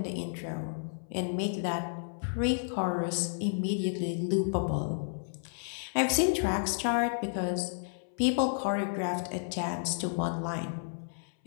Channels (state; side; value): silent; right; 57 dB below the other